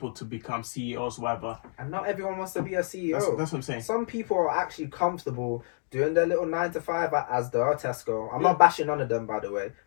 to become CEOs, whatever. And not everyone wants to be a CEO. That's what I'm saying. Some people are actually comfortable doing their little 9 to 5 as the Tesco. I'm not bashing none of them, by the way,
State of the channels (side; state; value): right; silent; digital silence